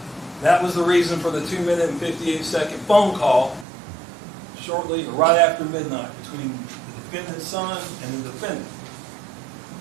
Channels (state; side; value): drops out; left; at 3.7 s